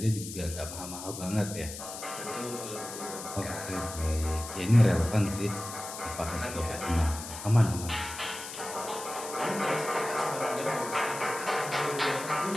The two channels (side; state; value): left; noise; hiss, 10 dB below the sound